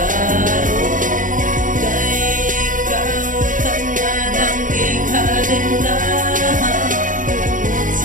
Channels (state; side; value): late; left; 0.38 ms